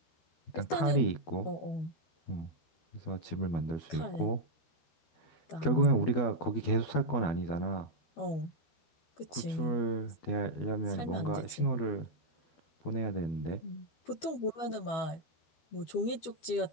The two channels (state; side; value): late; right; 12 ms